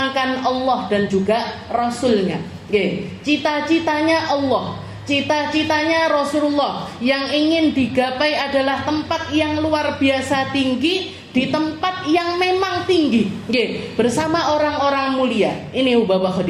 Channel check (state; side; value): identical; both; correlation 1.00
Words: Allah dan juga Rasulnya. Cita-citanya Allah, cita-citanya Rasulullah yang ingin digapai adalah tempat yang luar biasa tinggi, di tempat yang memang tinggi, bersama orang-orang mulia. Ini Ubabah